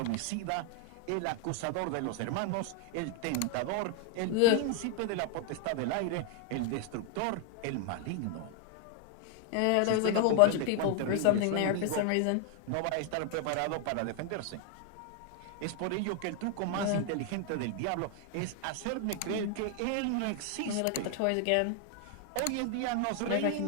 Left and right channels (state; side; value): different; both; correlation 0.00